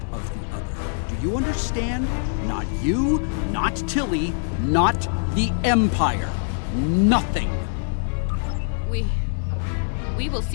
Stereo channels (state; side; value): silent; right; digital silence